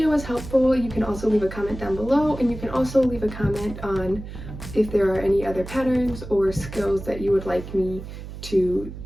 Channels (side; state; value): right; noise; hum, 11 dB below the sound